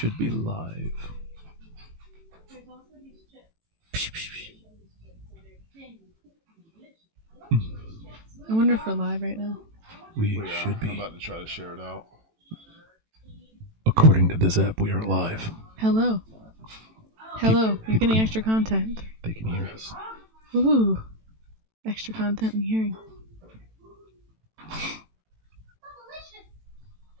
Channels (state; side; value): late; left; 18 ms